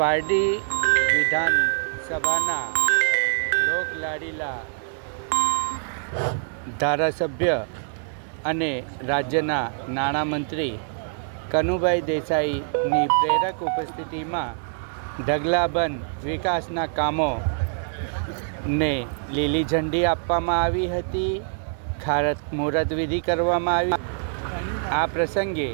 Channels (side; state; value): left; silent; digital silence